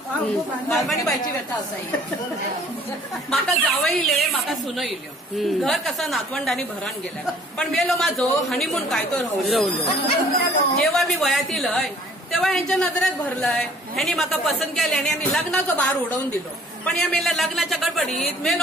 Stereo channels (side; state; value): both; normal; correlation 0.54